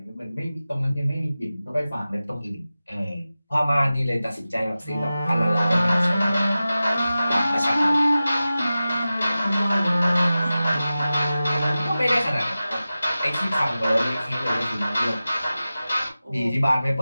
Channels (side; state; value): both; inverted; correlation -0.95